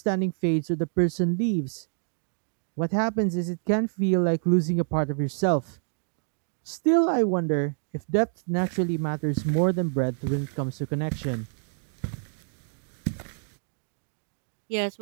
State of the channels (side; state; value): left; silent; digital silence